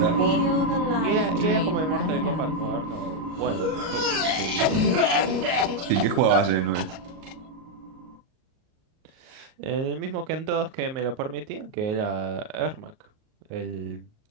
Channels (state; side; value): late; left; 38 ms